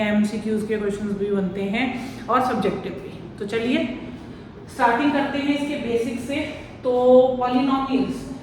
एमसीक्यूज के क्वेश्चंस भी बनते हैं और सब्जेक्टिव भी। तो चलिए स्टार्टिंग करते हैं इसके बेसिक से। तो पॉलिनोमियल्स,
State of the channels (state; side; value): identical; both; correlation 1.00